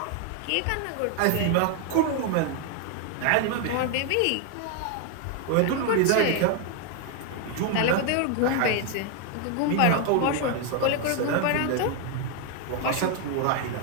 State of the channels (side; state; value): both; different; correlation 0.01